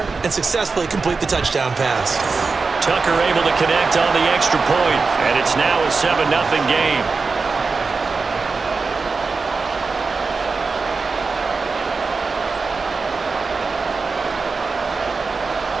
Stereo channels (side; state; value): left; quieter; 4.4 dB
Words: and successfully complete the touchdown pass. Tucker able to connect on the extra point, and it's now a 7-0 game.